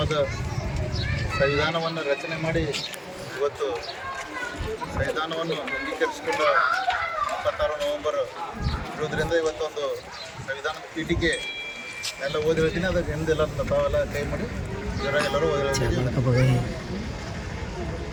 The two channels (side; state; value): both; identical; correlation 1.00